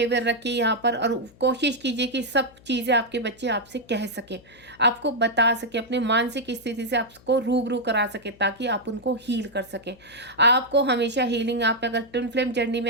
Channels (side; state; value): left; noise; hum, 26 dB below the sound